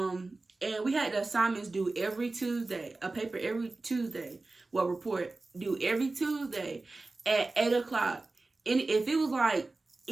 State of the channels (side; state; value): left; quieter; 3.3 dB